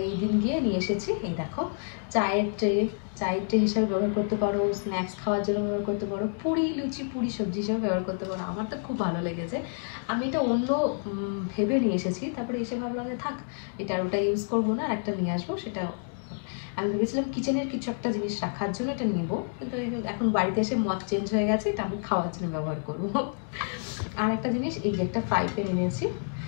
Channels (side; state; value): right; silent; digital silence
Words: এই দিন গিয়ে নিয়ে এসেছি। এই দেখো, চায়ের ট্রে হিসাবে ব্যবহার করতে পারো, স্ন্যাক্স খাওয়ার জন্য ব্যবহার করতে পারো, পুরি লুচি পুরি সবজি হিসাবে ব্যবহার করতে পারো। আমার তো খুব ভালো লেগেছে, আমি এটা অন্য ভেবে নিয়ে এসেছি, তারপরে এসে ভাবলাম যে থাক, এটা আর ওটা ইউজ করবো না, আর একটা নিয়ে আসবো। সেটা আমি ভেবেছিলাম কিচেনের কিছু একটা জিনিস রাখার জন্য এটা নিব, কিন্তু এখন বাড়িতে এসে মত চেঞ্জ হয়ে গেছে, এটা আমি খাওয়ার জন্য ব্যবহার করবো। আর একটা জিনিস, এই যে একটা ফ্রাই প্যান এনেছি।